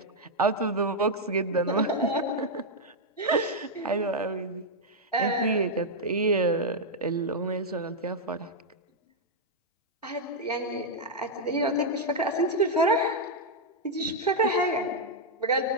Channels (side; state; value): both; normal; correlation -0.02